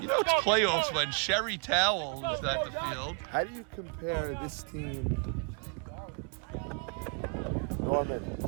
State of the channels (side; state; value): left; quieter; 39.0 dB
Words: know it's playoffs when Sherry Towell is at the field. How do you compare this team normal?